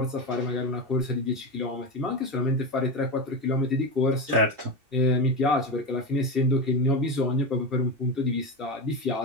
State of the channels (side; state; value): left; late; 2.7 ms